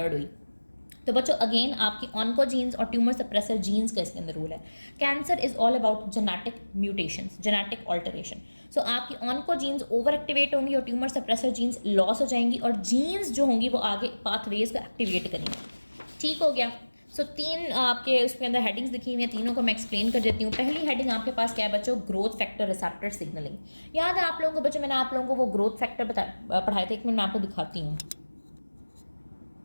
हुई? तो बच्चों अगेन आपकी ऑन्कोजीन्स और ट्यूमर सप्रेसर जीन्स का इसके अंदर रूल है। Cancer is all about genetic mutations, genetic alteration. So आपकी ऑन्कोजीन्स ओवर एक्टिवेट होंगी और ट्यूमर सप्रेसर जीन्स लॉस हो जाएंगी, और जीन्स जो होंगी वो आगे पाथवेज को एक्टिवेट करेंगी। ठीक हो गया। सो तीन आपके उसके अंदर हेडिंग्स लिखी हुई हैं, तीनों को मैं एक्सप्लेन कर देती हूँ। पहली हेडिंग आपके पास क्या है बच्चों? Growth factor receptor signalling. याद है आप लोगों को बच्चों, मैंने आप लोगों को वो ग्रोथ फैक्टर पढ़ाए थे, एक मिनट मैं आपको दिखाती हूँ।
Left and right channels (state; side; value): inverted; both; correlation -1.00